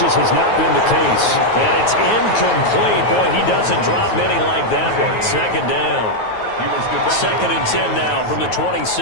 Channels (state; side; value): late; right; 9.3 ms